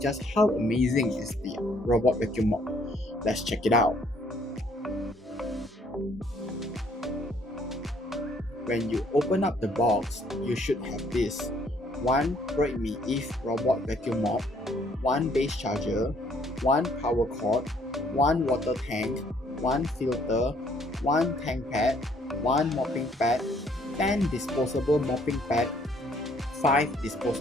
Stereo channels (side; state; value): both; normal; correlation 0.64